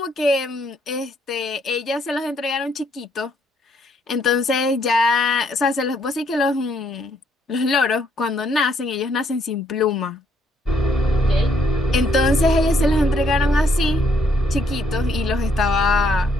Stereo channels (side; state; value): both; normal; correlation 0.70